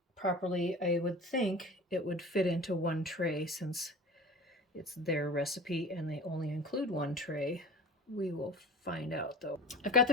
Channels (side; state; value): both; normal; correlation 0.37